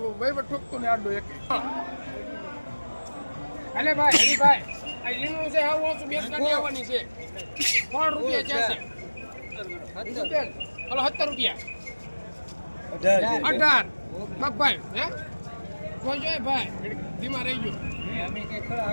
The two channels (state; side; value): inverted; both; correlation -1.00